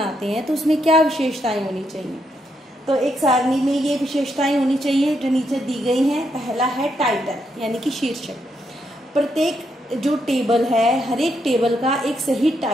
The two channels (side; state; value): both; normal; correlation 0.79